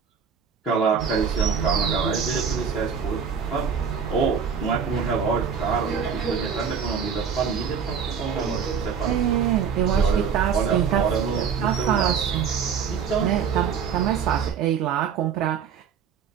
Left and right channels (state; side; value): quieter; left; 6.8 dB